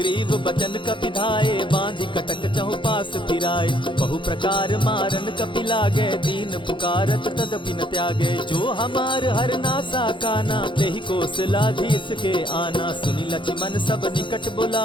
बचन कपि धाये, बांधि कटक चहु पास फिराए। बहु प्रकार मारन कपि लागे, दीन पुकारत तदपि न त्यागे। जो हमार हर नासा काना, तेहि कौशलाधीश के आना। सुनि लक्ष्मण सब निकट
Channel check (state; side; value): late; right; 0.23 ms